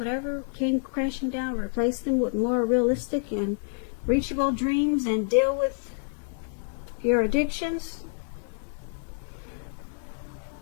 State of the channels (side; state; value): right; silent; digital silence